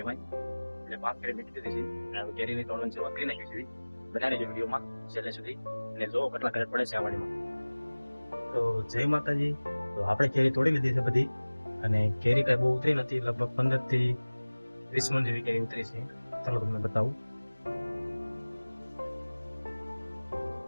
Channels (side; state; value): both; inverted; correlation -1.00